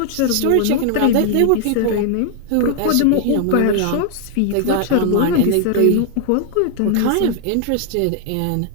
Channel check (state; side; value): different; both; correlation 0.00